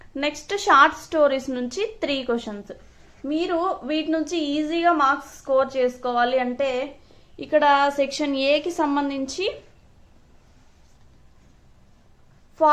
నెక్స్ట్ షార్ట్ స్టోరీస్ నుంచి 3 క్వశ్చన్స్. మీరు వీటి నుంచి ఈజీగా మార్క్స్ స్కోర్ చేసుకోవాలి అంటే ఇక్కడ సెక్షన్ ఏకి సంబంధించి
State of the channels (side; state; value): both; identical; correlation 1.00